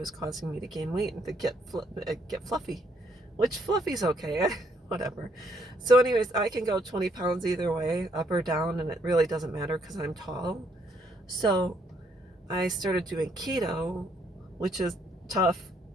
causing me to gain weight and to get fluffy, which fluffy's okay, whatever. So anyways, I can go 20 pounds either way, up or down, and it really doesn't matter because I'm tall. So I started doing keto, which is tough.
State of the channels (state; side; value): normal; both; correlation 0.70